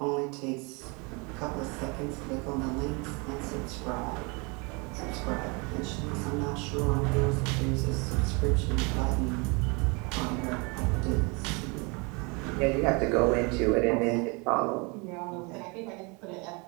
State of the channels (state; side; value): quieter; left; 30.1 dB